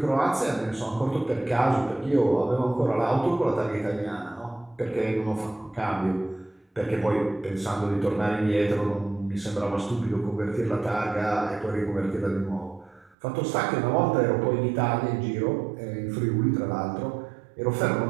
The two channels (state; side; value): drops out; left; at 13.2 s